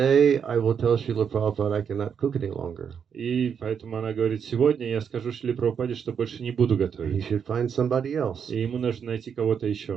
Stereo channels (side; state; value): left; quieter; 7.3 dB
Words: I will tell Srila Prabhupada I cannot cook any longer. И поэтому она говорит, сегодня я скажу Шриле Прабхупаде, что больше не буду He готовить. should find somebody else." И ему нужно найти кого-то